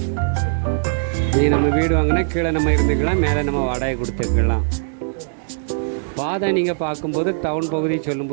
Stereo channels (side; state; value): left; silent; digital silence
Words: நம்ம வீடு வாங்கினா கீழே நம்ம இருந்துக்கலாம், மேலே நம்ம வாடகை கொடுத்துக்கலாம். பாதை நீங்கள் பார்க்கும்போது டவுன் பகுதி